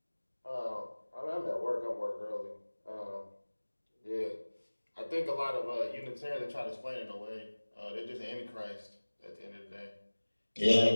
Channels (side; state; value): both; inverted; correlation -1.00